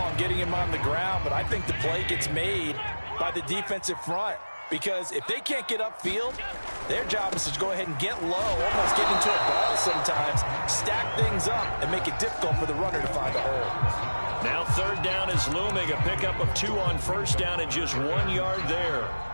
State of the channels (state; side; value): inverted; both; correlation -1.00